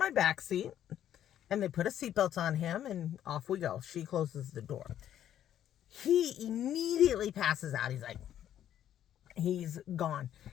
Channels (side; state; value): right; quieter; 10.9 dB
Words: back seat, and they put a seatbelt on him, and off we go. She closes the door. He immediately passes out. He's gone.